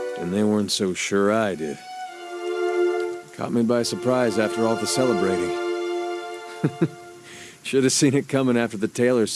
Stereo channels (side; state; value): both; identical; correlation 1.00